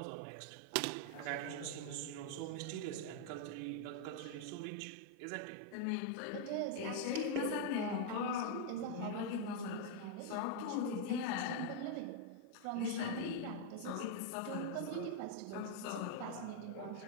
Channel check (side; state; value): both; different; correlation 0.00